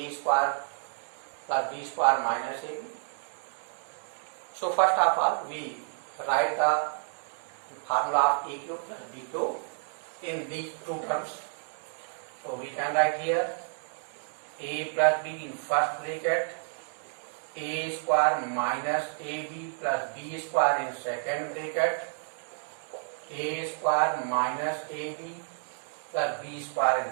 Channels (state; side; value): silent; left; 58 dB below the other